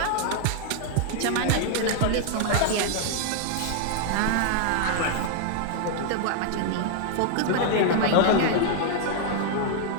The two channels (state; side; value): different; both; correlation 0.00